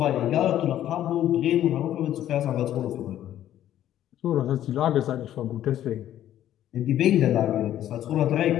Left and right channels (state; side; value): quieter; right; 11.9 dB